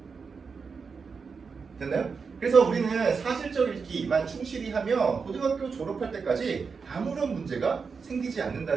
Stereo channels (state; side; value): quieter; left; 5.3 dB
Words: 됐나요? 그래서 우리는 사실적 읽기만 충실히 하면 고등학교 졸업할 때까지 아무런 문제가 생기지